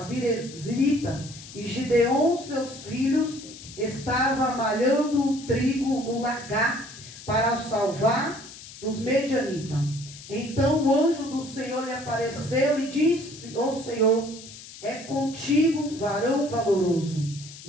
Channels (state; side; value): noise; left; hiss, 16 dB below the sound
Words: Birezrita, e Gideon, seus filhos, estava malhando o trigo no lagar para salvar dos medianitas. Então o anjo do Senhor lhe apareceu e disse: ó Senhor, é contigo, varão valoroso.